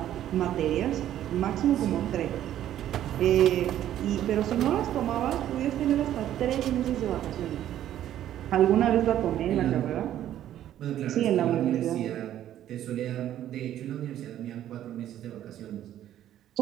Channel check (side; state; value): left; quieter; 11.8 dB